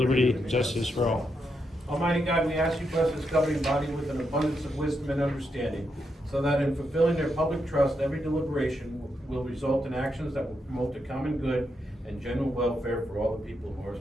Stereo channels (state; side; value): normal; both; correlation 0.82